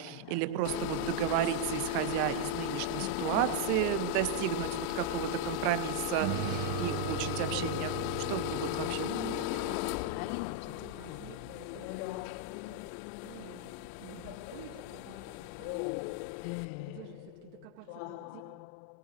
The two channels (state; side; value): different; both; correlation 0.00